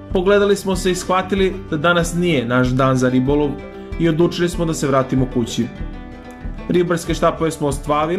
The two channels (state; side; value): identical; both; correlation 1.00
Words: Pogledali smo se i shvatili da danas nije naš dan za ribolov i odlučili smo da se vratimo kući. Ribarske štapove smo